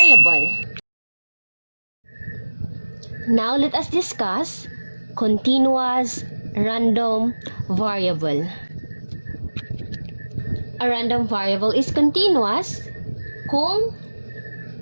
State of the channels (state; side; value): inverted; both; correlation -1.00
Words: Now let us discuss continuous random variable. A random variable is continuous kung